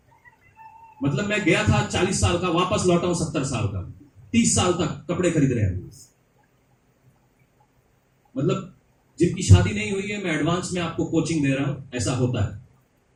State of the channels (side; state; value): both; identical; correlation 1.00